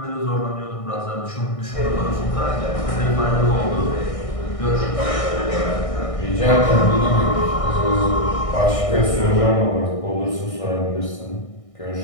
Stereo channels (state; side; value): late; right; 1.6 ms